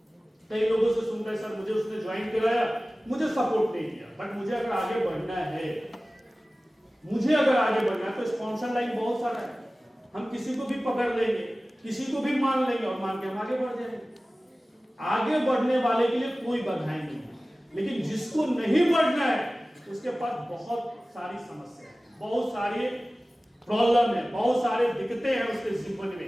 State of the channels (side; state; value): both; normal; correlation 0.97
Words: कई लोगों से सुनते हैं सर मुझे उसने ज्वाइन कराया, मुझे सपोर्ट नहीं किया। बट मुझे अगर आगे बढ़ना है तो स्पॉन्सर लाइन बहुत सारा है। हम किसी को भी पकड़ लेंगे, किसी को भी मान लेंगे और मान के हम आगे बढ़ जाएंगे। आगे बढ़ने वाले के लिए कोई बाधाएं नहीं है, लेकिन जिसको नहीं बढ़ना है उसके पास बहुत सारी समस्या है, बहुत सारी प्रॉब्लम है, बहुत सारे दिक्कतें हैं उसके जीवन